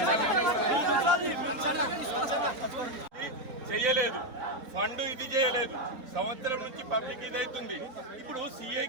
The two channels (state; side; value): late; left; 4.1 ms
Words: చేయలేదు, ఫండ్ ఇది చేయలేదు, సంవత్సరం నుంచి పబ్లిక్ ఇది అవుతుంది. ఇప్పుడు